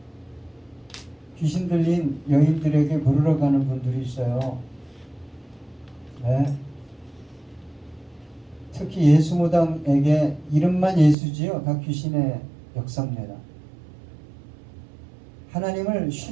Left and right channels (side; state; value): left; drops out; at 11.2 s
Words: 귀신 들린 여인들에게 물으러 가는 분들이 있어요. 네. 특히 예수무당에게 이름만 예수지요. 다 귀신의 역사입니다. 하나님을